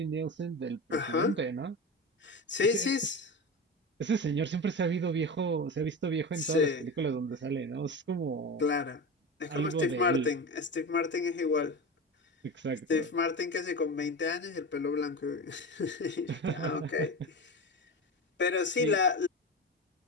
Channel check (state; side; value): normal; both; correlation 0.24